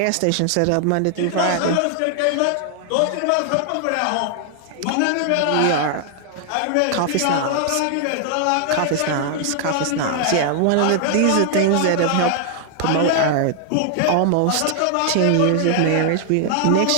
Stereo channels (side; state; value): both; different; correlation 0.00